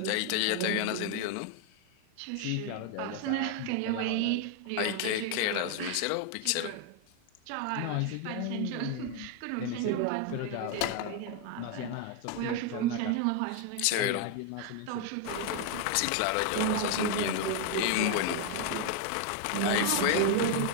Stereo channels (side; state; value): both; different; correlation 0.01